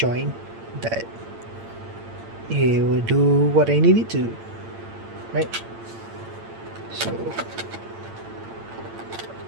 that it will do what I need it to, right? So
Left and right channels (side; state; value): left; late; 8.8 ms